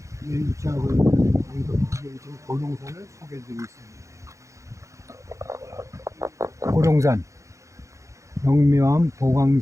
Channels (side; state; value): left; late; 0.15 ms